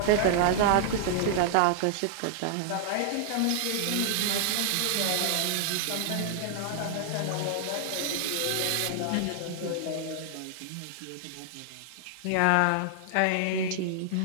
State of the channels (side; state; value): both; different; correlation -0.01